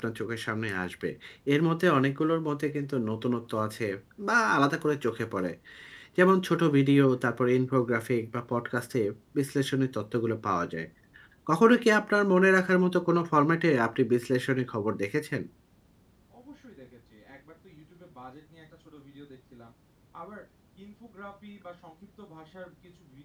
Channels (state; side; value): identical; both; correlation 1.00